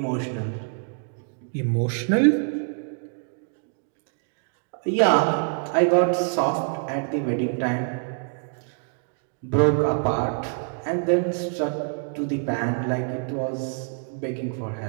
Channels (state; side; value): silent; left; 55 dB below the other